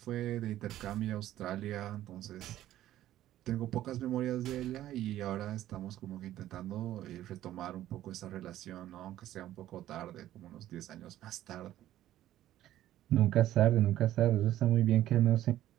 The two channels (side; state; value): left; quieter; 13.3 dB